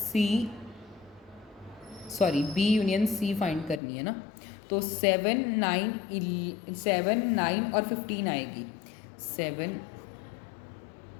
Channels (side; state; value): right; drops out; at 3.8 s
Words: बी यूनियन सी फाइंड करनी है ना, तो 7, 9 और 15 आएगी। 7,